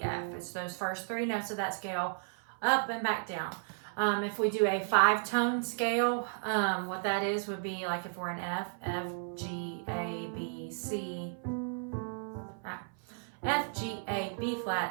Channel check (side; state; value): left; silent; 55 dB below the other